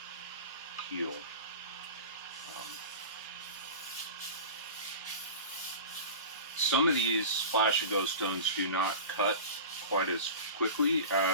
heel. Some of these Splash and Go stones do not cut quite as quickly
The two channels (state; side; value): inverted; both; correlation -0.34